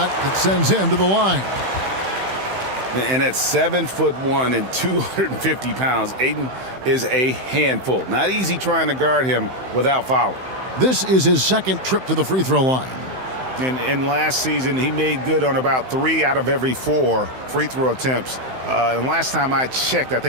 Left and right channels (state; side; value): late; left; 15 ms